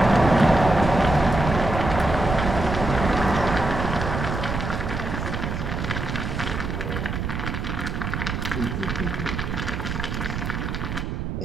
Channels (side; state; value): right; noise; rumble, 3 dB below the sound